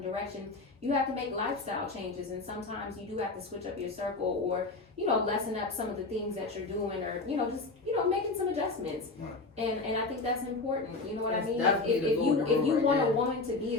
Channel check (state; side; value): quieter; right; 3.6 dB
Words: direction, you have to make lifestyle changes. And sometimes you do have to switch up your circle or, lessen up some of the things that you're doing or, just, making some adjustments. Right. And I think that's important. You know what I That's mean? definitely the If you golden rule want right a there. woman to be